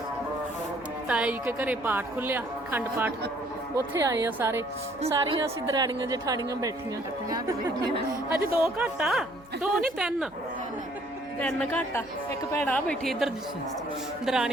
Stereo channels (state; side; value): noise; right; hum, 27 dB below the sound